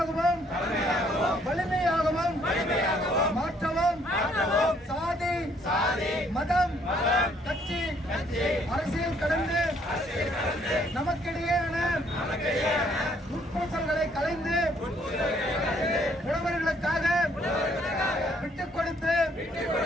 மாற்றவும் சாதி மதம் கட்சி அரசியல் கடந்து நமக்கிடையேயான உட்பூசல்களை கலைந்து உழவர்களுக்காக விட்டுக் கொடுத்து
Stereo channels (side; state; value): both; normal; correlation 0.66